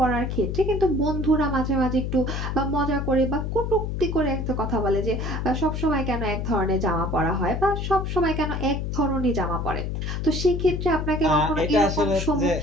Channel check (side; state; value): left; noise; hum, 2 dB below the sound